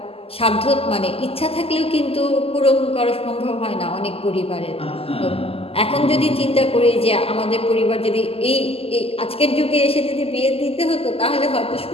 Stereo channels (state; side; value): late; right; 0.28 ms